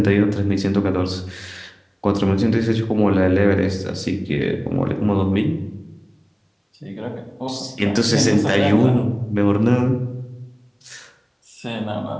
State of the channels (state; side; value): identical; both; correlation 1.00